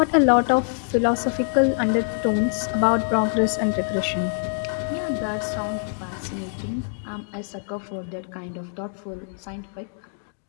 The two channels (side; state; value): right; silent; digital silence